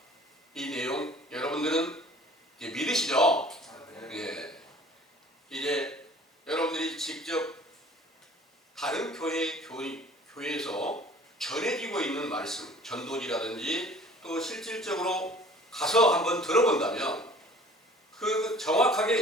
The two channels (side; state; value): both; normal; correlation 0.49